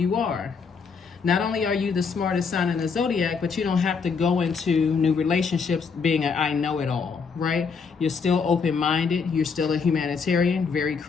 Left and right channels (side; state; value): right; quieter; 5.5 dB